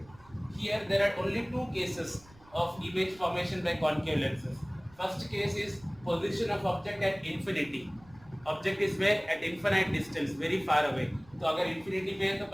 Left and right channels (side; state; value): right; noise; rumble, 25 dB below the sound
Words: Here there are only 2 cases of image formation by concave lenses. First case is position of object at infinity. Object is where? At infinite distance, very far away. तो अगर infinity पे है तो